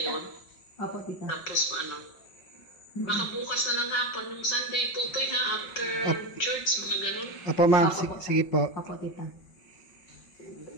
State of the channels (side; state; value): right; late; 5.5 ms